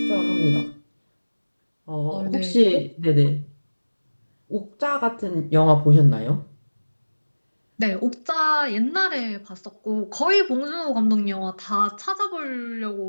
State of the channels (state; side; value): inverted; both; correlation -1.00